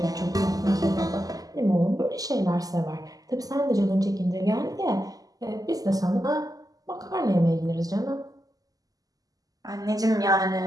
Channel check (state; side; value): late; left; 0.17 ms